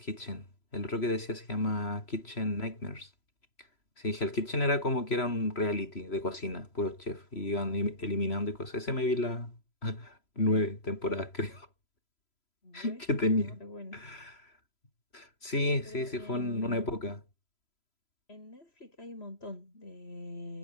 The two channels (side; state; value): right; late; 3.0 ms